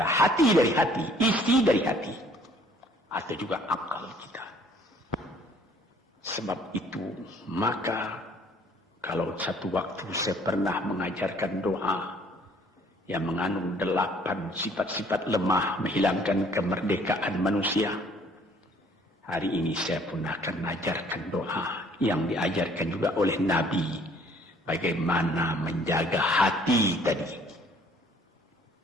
hati dari hati, isi dari hati, atau juga akal kita. Sebab itu, maka kalau satu waktu saya pernah mengajarkan doa yang mengandung 8 sifat-sifat lemah menghilangkan kemerdekaan manusia. Hari ini saya pun akan mengajarkan doa yang diajarkan juga oleh Nabi. Bagaimana menjaga hati tadi.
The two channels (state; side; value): normal; both; correlation 0.58